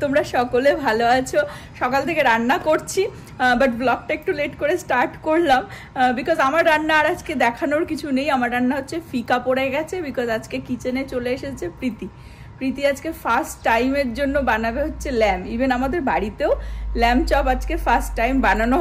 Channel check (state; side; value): identical; both; correlation 1.00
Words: তোমরা সকলে ভালো আছো। সকাল থেকে রান্না করছি, বাট ব্লগটা একটু লেট করে স্টার্ট করলাম বিকজ আমার রান্না আর আজকে দেখানোর কিছু নেই। আমার রান্না হচ্ছে ফিকা পড়ে গেছে বিকজ আজকে কিচেনে চলে এসেছে প্রীতি আজকে ফার্স্ট টাইমের জন্য বানাবে হচ্ছে ল্যাম্প। ইভেন আমাদের বাড়িতেও ল্যাম্প চপ আজকে ফার্স্ট টাইম বানানো